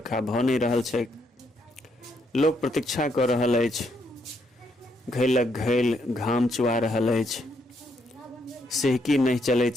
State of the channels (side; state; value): both; normal; correlation 0.75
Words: भऽ नहीं रहल छै। लोक प्रतीक्षा कऽ रहल अछि, घैलक घैल घाम चुआ रहल अछि, सिहकी नहीं चलैत